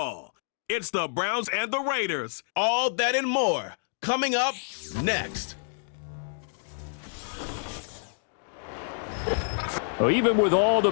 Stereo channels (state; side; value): silent; right; digital silence